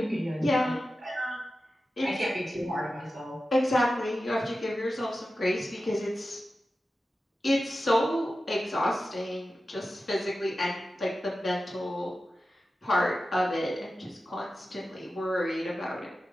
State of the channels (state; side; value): normal; both; correlation 0.93